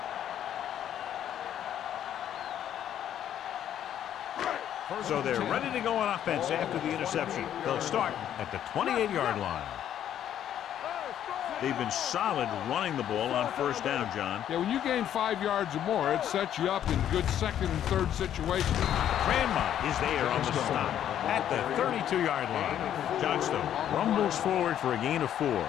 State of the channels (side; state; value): right; quieter; 10.5 dB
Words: So they're ready to go on offense after the interception. They'll start at the 28-yard line. They've been solid running the ball on first down, John. Yeah, when you gain 5 yards or more, it sets you up in good second and third situations. Grandma is there on the stop at the 32-yard line. Johnstone rumbles forward for a gain of 4.